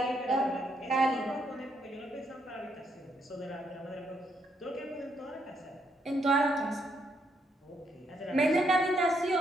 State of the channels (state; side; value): normal; both; correlation 0.75